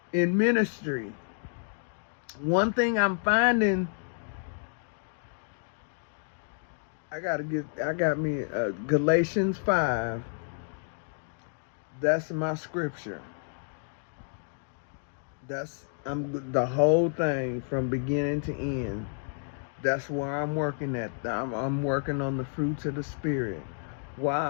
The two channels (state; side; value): silent; right; digital silence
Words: in ministry. One thing I'm finding, I got me Galatians 5. That's my scripture. I'm the whole thing from beginning to end. That's where I'm working at. I'm working on the fruits of the Spirit. While